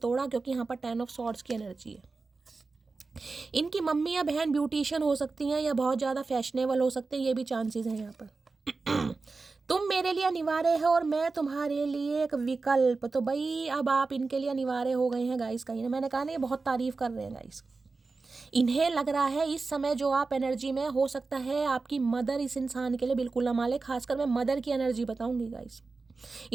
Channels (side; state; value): left; quieter; 4.0 dB